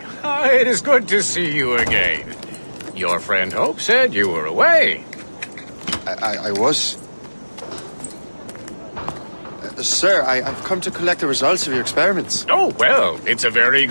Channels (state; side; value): inverted; both; correlation -1.00